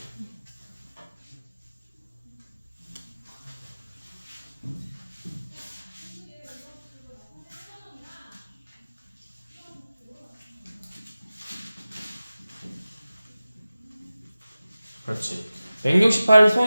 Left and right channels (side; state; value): both; inverted; correlation -0.96